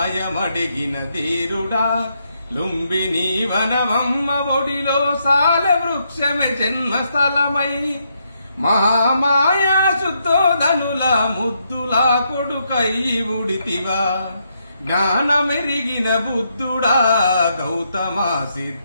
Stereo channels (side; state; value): both; inverted; correlation -0.78